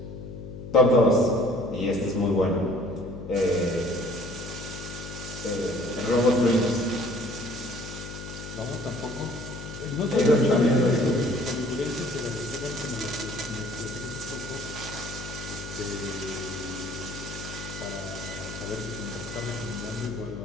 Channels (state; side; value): noise; left; hum, 10 dB below the sound